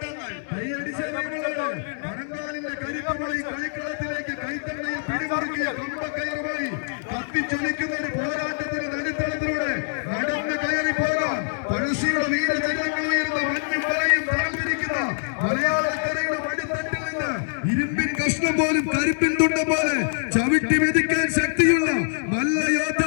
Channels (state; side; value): silent; right; 62 dB below the other